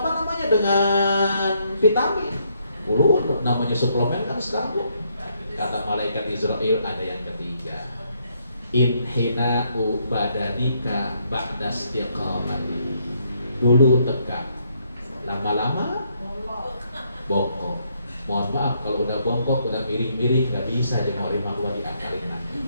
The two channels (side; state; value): both; inverted; correlation -0.73